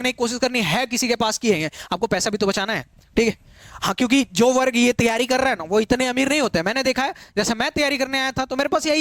की कोशिश करनी है, किसी के पास की है, आपको पैसा भी तो बचाना है, ठीक है। हाँ, क्योंकि जो वर्ग ये तैयारी कर रहा है ना वो इतने अमीर नहीं होते। मैंने देखा है, जैसे मैं तैयारी करने आया था तो मेरे पास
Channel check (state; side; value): identical; both; correlation 1.00